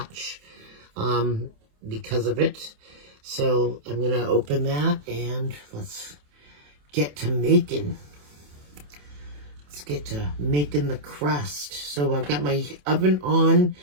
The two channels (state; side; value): late; left; 27 ms